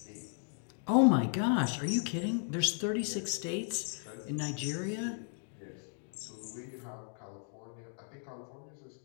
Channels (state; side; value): silent; right; 54 dB below the other